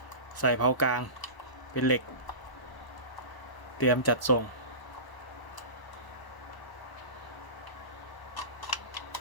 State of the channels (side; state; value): right; late; 1.0 ms